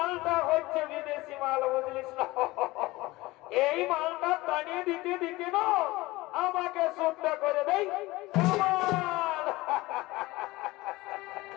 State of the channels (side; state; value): right; quieter; 20.1 dB